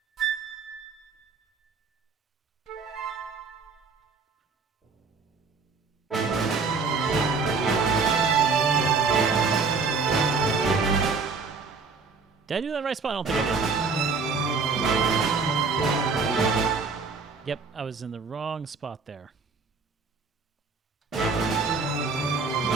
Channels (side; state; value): left; quieter; 4.6 dB